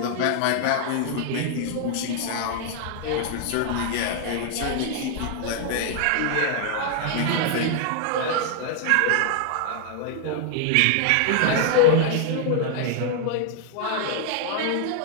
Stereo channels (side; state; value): both; different; correlation 0.00